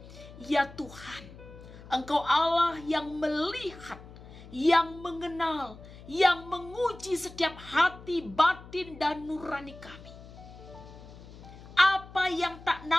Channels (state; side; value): noise; left; hum, 17 dB below the sound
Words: Ya Tuhan, Engkau Allah yang melihat, yang mengenal, yang menguji setiap hati, batin, dan nurani kami. Apa yang tak